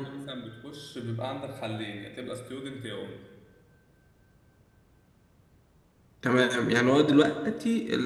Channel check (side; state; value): both; identical; correlation 1.00